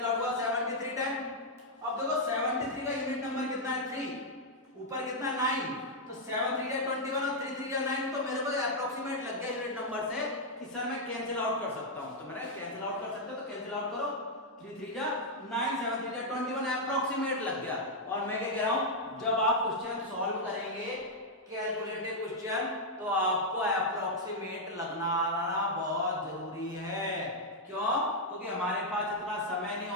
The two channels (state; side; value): normal; both; correlation -0.03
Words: आउट हुआ, 73 टाइम। अब देखो 73 का यूनिट नंबर कितना है 3, ऊपर कितना 9, तो 7 3 या 21 और 3 3 या 9, तो मेरे को अप्रोक्सीमेट लग गया यूनिट नंबर से कि सर मैं कैंसिल आउट कर सकता हूं। तो मैंने कैंसिल आउट कर सकते हो तो कैंसिल आउट करो, 3 3 या 9, 7 3 या 21 अप्रोक्सीमेट लग गया। और मैं क्या कह रहा हूं, जब आप क्वेश्चन सॉल्व करेंगे कैलकुलेटेड क्वेश्चन, तो आपको अप्रोक्सीमेट लगना बहुत जरूरी है। क्यों? क्योंकि हमारे पास इतना समय नहीं